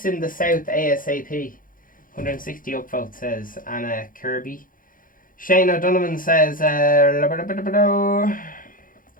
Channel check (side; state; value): right; late; 0.40 ms